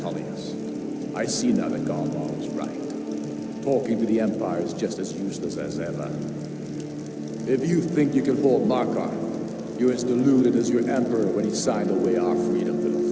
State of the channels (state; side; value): identical; both; correlation 1.00